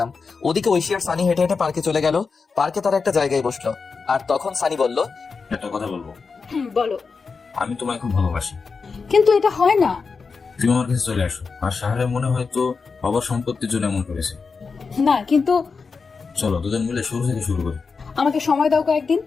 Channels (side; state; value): right; quieter; 4.9 dB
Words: ওদিকে ঐশী আর সানি হেঁটে হেঁটে পার্কে চলে গেল। পার্কে তারা একটা জায়গায় বসলো, আর তখন সানি বলল, একটা কথা বলবো। বলো। আমি তোমায় খুব ভালোবাসি। কিন্তু এটা হয় না। তুমি আমার কাছে চলে আসো। আর সাহারে মনে হয় তো বাবার সম্পত্তির জন্য এমন করেছে। না কিন্তু চলো দুজন মিলে শুরু থেকে শুরু করি। আমাকে সময় দাও কয়েকদিন।